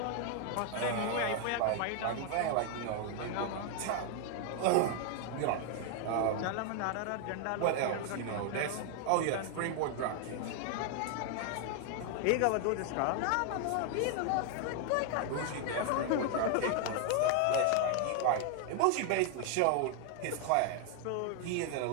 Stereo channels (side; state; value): both; different; correlation 0.00